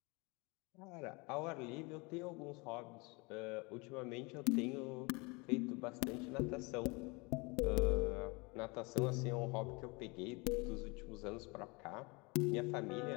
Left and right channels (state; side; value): quieter; right; 27.6 dB